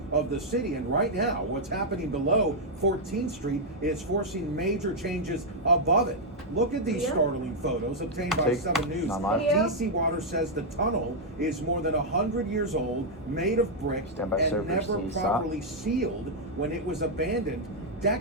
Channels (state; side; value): normal; both; correlation -0.03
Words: of the city. And right now, what's happening below 14th Street is forcing major changes above it. Look at these startling photos obtained by Take 7 News. not live. DC Water says the tunnel is more than 100 years old, made of brick, Stand by and server, never C, stop. properly sealed when it was abandoned